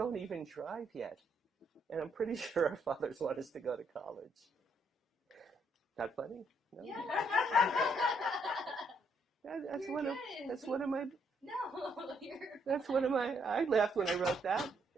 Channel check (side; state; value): both; normal; correlation 0.72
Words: even drive yet. And I'm pretty sure our fathers want us to go to college." Not funny? No? Yeah. That's one of my, No, that's one of my, I laughed when I wrote that.